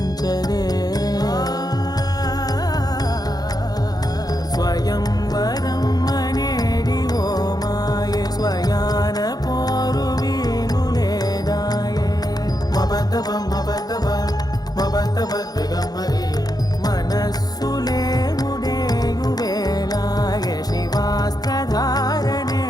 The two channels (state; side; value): late; right; 0.19 ms